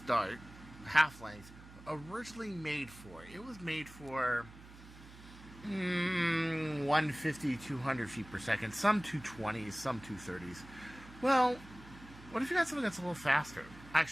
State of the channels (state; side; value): noise; right; hum, 18 dB below the sound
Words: dart, half length, originally made for? It was made for 150, 200 feet per second, some 220s, some 230s. Well, what if you got something that's a little faster?